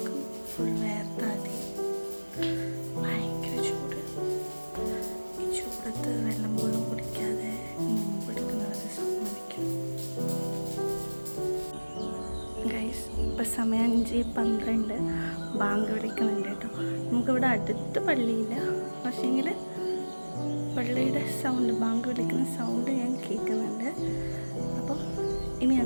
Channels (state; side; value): inverted; both; correlation -1.00